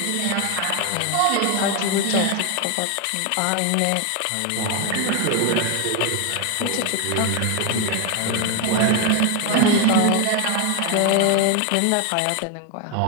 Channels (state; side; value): different; both; correlation 0.01